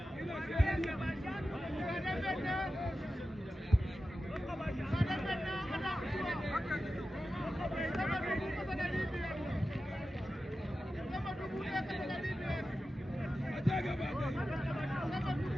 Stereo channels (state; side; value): normal; both; correlation 0.93